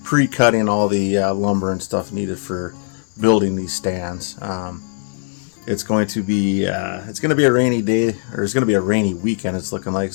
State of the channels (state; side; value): silent; right; 62 dB below the other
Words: pre-cutting all the lumber and stuff needed for building these stands. It's going to be a rainy day, or it's going to be a rainy weekend. It's looking like,